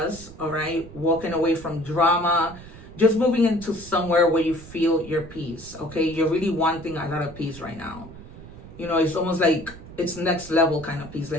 all right? Walking away from drama, just moving into somewhere where you feel your peace, okay? You're really wanting a lot of peace right now. You know, it's almost like it's next level kind of peace,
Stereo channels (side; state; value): right; noise; rumble, 16 dB below the sound